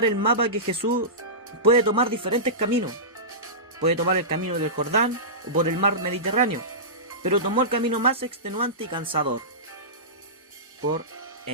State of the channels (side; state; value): both; normal; correlation -0.19